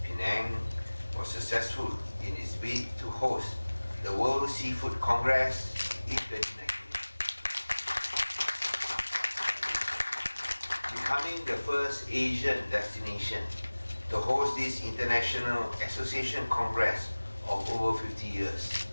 Penang was successful in its bid to host the World Seafood Congress in 2019, becoming the first Asian destination to host this international association congress of over 50 years.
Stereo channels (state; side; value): inverted; both; correlation -1.00